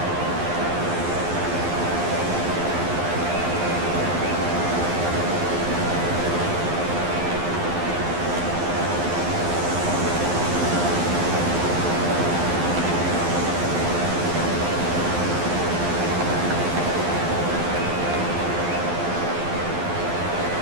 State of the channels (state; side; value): late; left; 12 ms